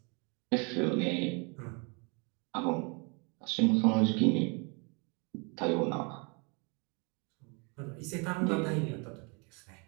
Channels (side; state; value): left; quieter; 32.9 dB